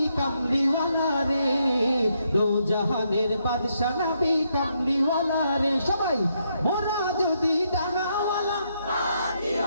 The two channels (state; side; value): inverted; both; correlation -0.77